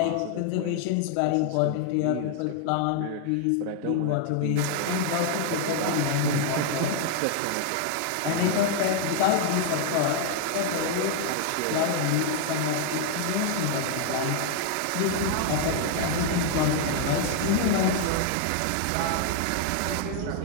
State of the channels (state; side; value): different; both; correlation 0.00